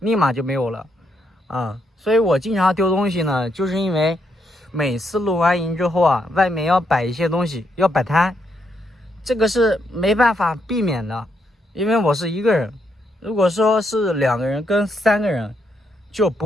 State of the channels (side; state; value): both; normal; correlation 0.78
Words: 马就没有了啊。所以我经常丢东西呢，就是因为每次露完营之后啊，外面要摆一些东西，要摆摊，这个是没办法避免的，因为我是一个人。如果说是2个人跟3个人，就